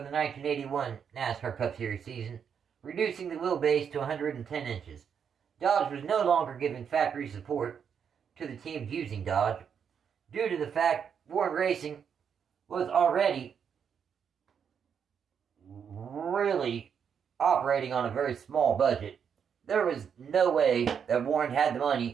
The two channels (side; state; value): left; quieter; 7.4 dB